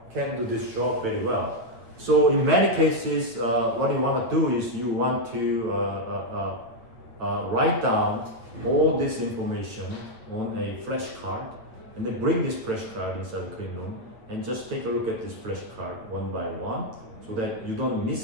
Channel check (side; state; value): left; late; 8.8 ms